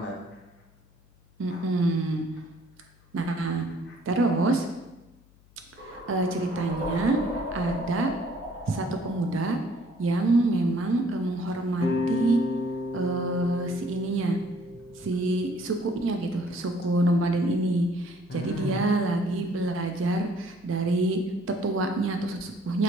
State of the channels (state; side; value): noise; left; hum, 28 dB below the sound